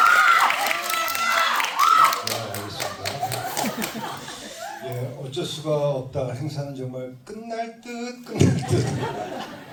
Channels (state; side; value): identical; both; correlation 1.00